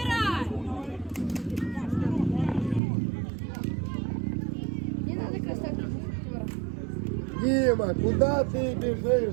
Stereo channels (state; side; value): drops out; left; at 2.8 s